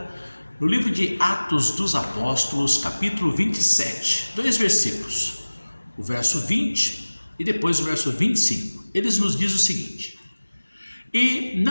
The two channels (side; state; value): both; inverted; correlation -1.00